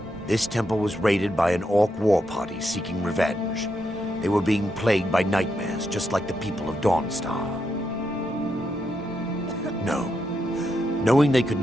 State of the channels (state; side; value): normal; both; correlation 0.82